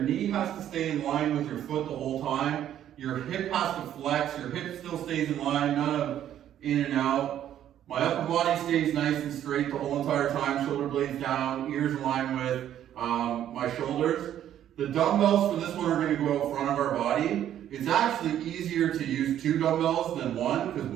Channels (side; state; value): left; quieter; 11.0 dB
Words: has to stay in line with your foot the whole time. Your hip has to flex. Your hip still stays in line, none of in and out. My upper body stays nice and straight the whole entire time. Shoulder blades down, ears in line with my shoulders. The dumbbells for this one are going to go out front of our body. It's actually easier to use 2 dumbbells than 1 because